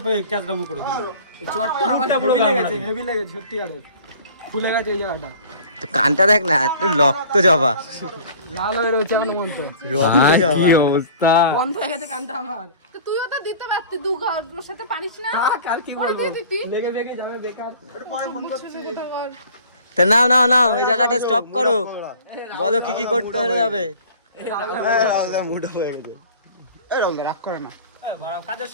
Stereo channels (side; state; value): both; inverted; correlation -0.46